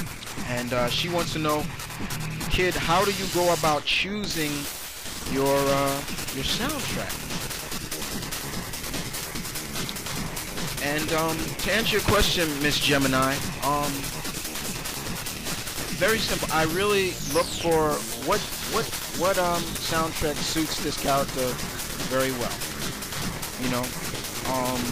And she wants to know, kid, how do you go about choosing your soundtrack? And to answer your question, Miss Gemini, very simple. I really look for what soundtrack suits this character very well.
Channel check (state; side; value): identical; both; correlation 1.00